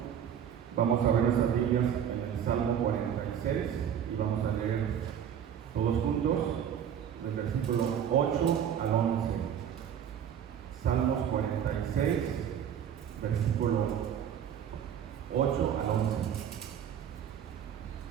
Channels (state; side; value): quieter; left; 8.9 dB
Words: Vamos a ver las Biblias en el Salmo 46 y vamos a leer todos juntos del versículo 8 al 11. Salmos 46, versículo 8 al 11.